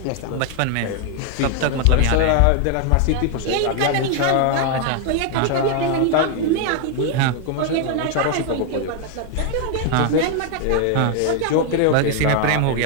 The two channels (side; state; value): both; different; correlation 0.00